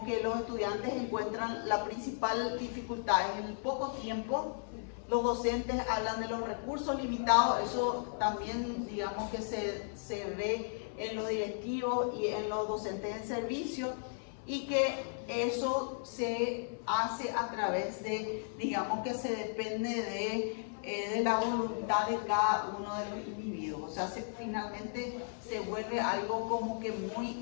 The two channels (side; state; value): right; silent; 54 dB below the other